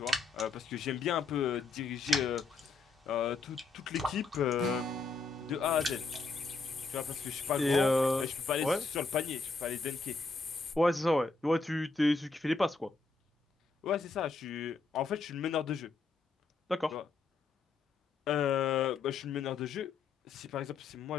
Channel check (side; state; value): right; quieter; 4.1 dB